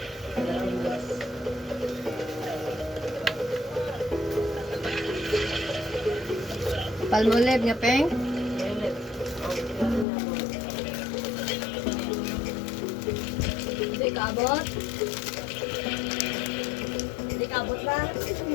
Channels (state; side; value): drops out; right; at 10.1 s